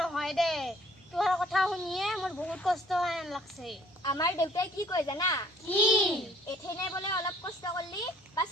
দে তোহাৰ কথা শুনিয়ে মোৰ বহুত কষ্ট হয় লাগছে আমাৰ দেউতাই কি কয় জানা কি এথেনে বোলে অলপ কষ্ট কৰলি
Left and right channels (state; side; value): normal; both; correlation 0.57